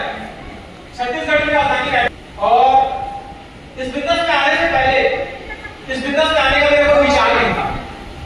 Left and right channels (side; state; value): both; identical; correlation 1.00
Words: छत्तीसगढ़ में राजधानी है। और इस बिजनेस में आने से पहले, इस बिजनेस में आने का मेरे को विचार नहीं था,